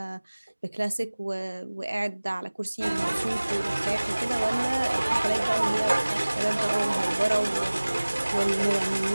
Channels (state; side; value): inverted; both; correlation -1.00